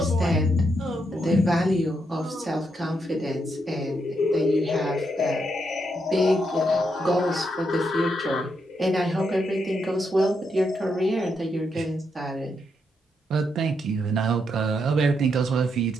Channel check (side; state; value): both; normal; correlation 0.80